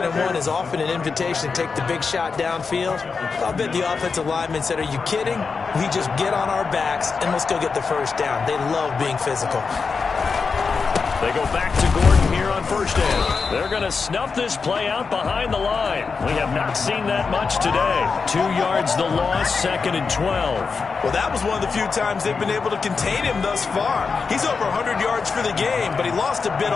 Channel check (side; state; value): right; quieter; 5.0 dB